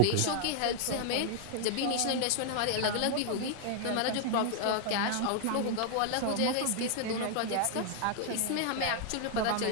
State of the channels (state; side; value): different; both; correlation 0.00